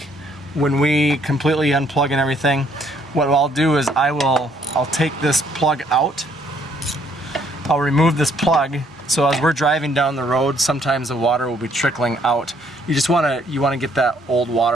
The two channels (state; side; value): normal; both; correlation 0.66